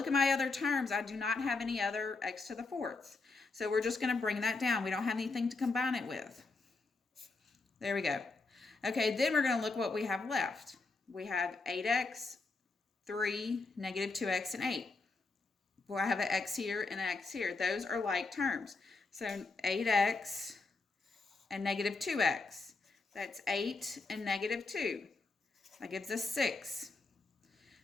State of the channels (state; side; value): quieter; right; 3.8 dB